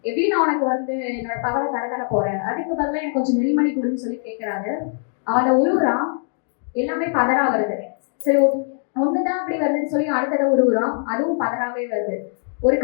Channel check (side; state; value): right; silent; 64 dB below the other